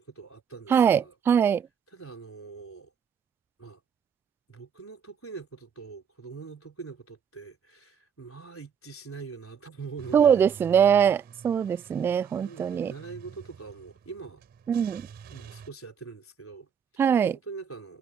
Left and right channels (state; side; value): quieter; left; 7.6 dB